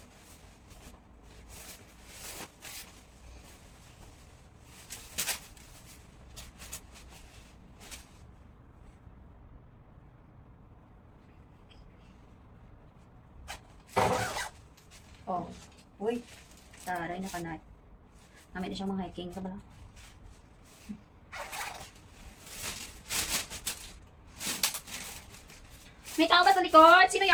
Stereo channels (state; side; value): identical; both; correlation 1.00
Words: Oh. Uy. Taray na kanay. Namin na siyang mga hiking. Ito ba lang? May tao ba sa likod? Sino